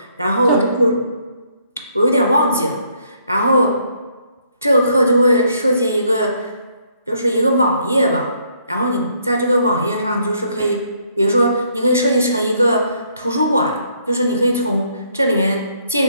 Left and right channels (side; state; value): both; inverted; correlation -0.69